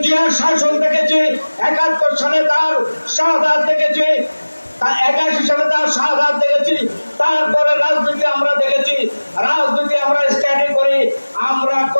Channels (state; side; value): inverted; both; correlation -1.00